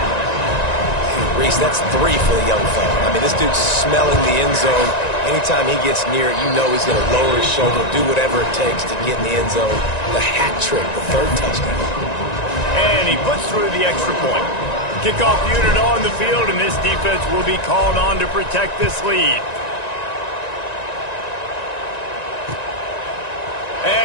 Reese, that's 3 for the young fella. I mean, this dude's smelling the end zone. Anytime he gets near it, you know he's going to lower his shoulder, do whatever it takes to get in the end zone. The hat trick, the 3rd touchdown. And he puts through the extra point. Kickoff unit on the field, and this defense will be called on to protect this lead.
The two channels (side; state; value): right; late; 1.9 ms